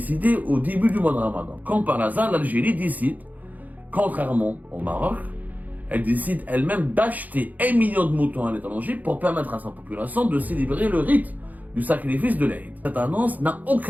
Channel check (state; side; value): late; left; 0.080 ms